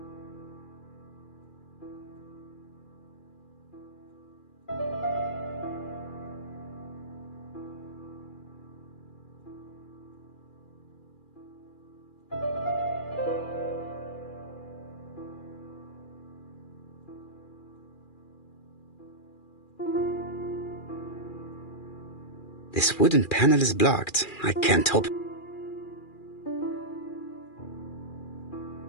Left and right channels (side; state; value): right; late; 2.4 ms